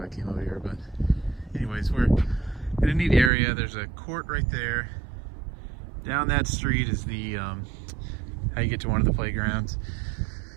I came over here, but anyways, we're in a neat area. There's a court right there. Down that street is the, how you get to one of the playgrounds.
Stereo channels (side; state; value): left; drops out; at 3.3 s